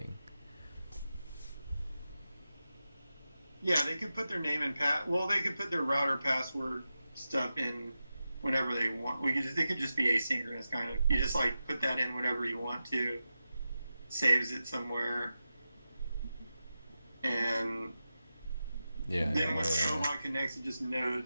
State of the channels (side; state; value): both; inverted; correlation -0.91